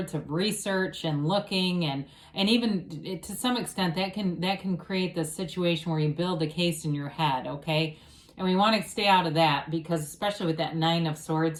of research and looking, and even to some extent that can create this situation where you build a case in your head, okay? And we want to stay out of that, because especially with that Nine of Swords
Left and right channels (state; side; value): identical; both; correlation 1.00